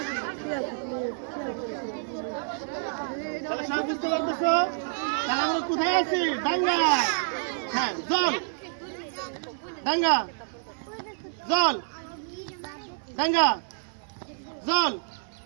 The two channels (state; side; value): silent; left; 59 dB below the other